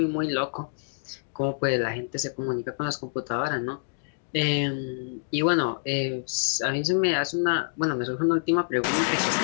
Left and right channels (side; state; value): right; silent; digital silence